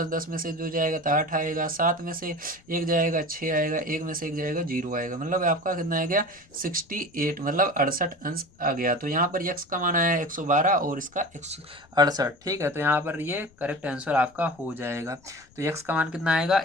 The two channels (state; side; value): noise; left; rumble, 29 dB below the sound